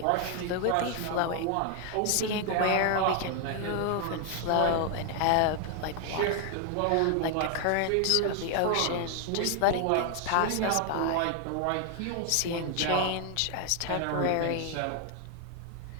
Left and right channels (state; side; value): different; both; correlation 0.00